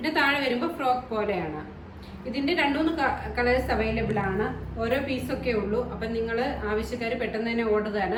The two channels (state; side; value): identical; both; correlation 1.00